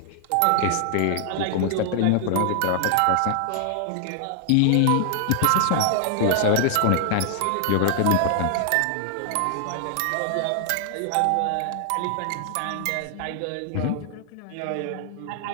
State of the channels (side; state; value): both; different; correlation 0.00